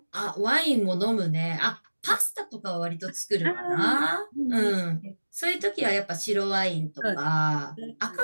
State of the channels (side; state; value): both; inverted; correlation -1.00